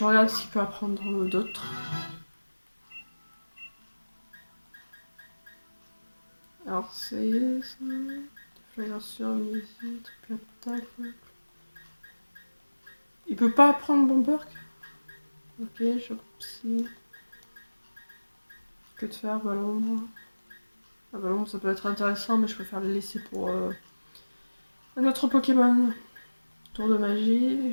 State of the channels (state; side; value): inverted; both; correlation -1.00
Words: regarde s'il peut apprendre d'autres. Alors c'est ça. Déflagration, amnésie, triple attaque. Il peut pas apprendre Bomberg. Ok, je psy. Que de faire, ballon. Ah, ballon, ça peut être intéressant, mais je préfère le laisser pour un autre Pokémon. Tour de magie,